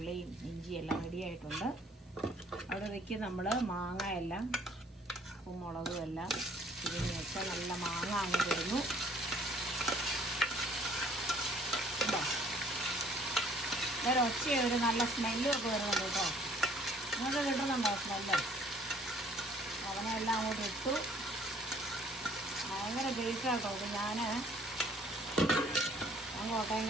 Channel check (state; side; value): normal; both; correlation 0.58